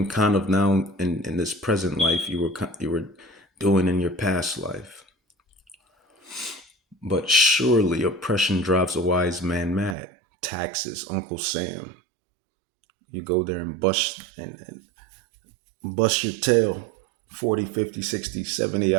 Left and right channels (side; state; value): left; drops out; at 10.0 s